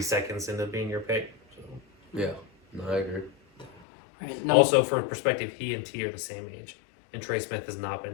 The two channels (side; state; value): right; drops out; at 3.9 s